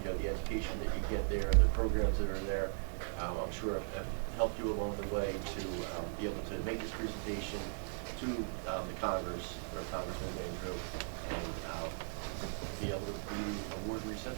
The education that you get there, the programs that are there, I'm sure have helped you along the way to be able to make this presentation to the Congress, or Congressman Van Drew, and be able to be award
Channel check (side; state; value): left; silent; 52 dB below the other